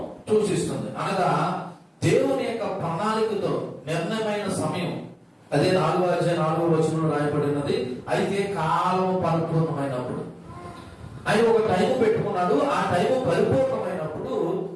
సూచిస్తుంది. అనగా దేవుని యొక్క ప్రణాళికతో నిర్ణయమైన సమయం. అదే 4వ అధ్యాయం 4వ వచనంలో రాయబడినది. అయితే కాలం పరిపూర్ణమైనప్పుడు ఆయన ఒక టైం పెట్టుకున్నాడు. ఆ టైం పరిపూర్ణమైనప్పుడు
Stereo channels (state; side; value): identical; both; correlation 1.00